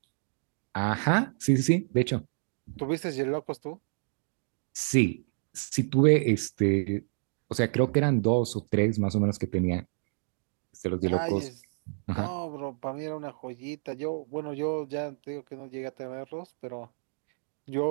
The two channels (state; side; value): silent; left; digital silence